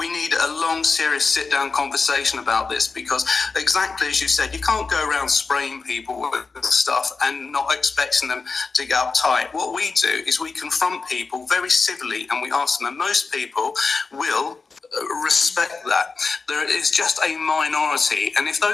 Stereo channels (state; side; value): quieter; right; 4.4 dB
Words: need a long, serious sit-down conversation about this, because exactly as you said, you can't go around spraying people with stuff and not expecting them to get uptight. What we do is we confront people very civilly, and we ask them, and most people will respect that. There is just a minority, and if